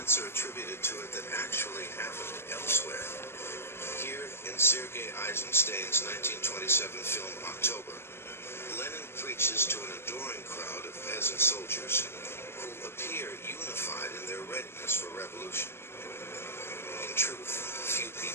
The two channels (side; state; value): right; late; 0.12 ms